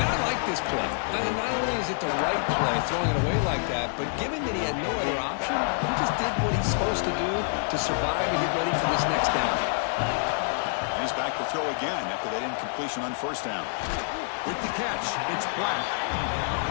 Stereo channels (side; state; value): right; silent; digital silence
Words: I like this play. And not only is it the right play, throwing it away like that, but given that he had no other option, he just did what he's supposed to do to survive and get ready for this next down. And he's back to throw again after that incompletion on first down. With the catch, it's Black.